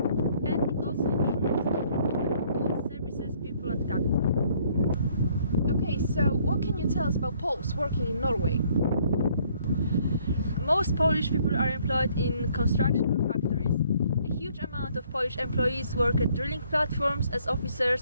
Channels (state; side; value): inverted; both; correlation -0.63